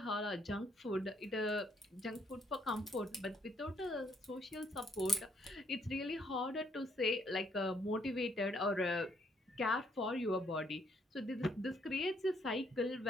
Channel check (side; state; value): both; normal; correlation 0.70